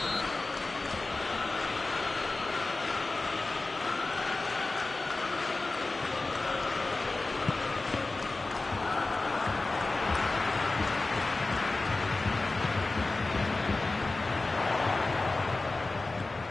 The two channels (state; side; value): quieter; right; 3.3 dB